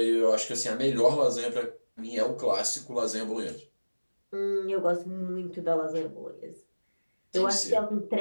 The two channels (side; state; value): both; inverted; correlation -1.00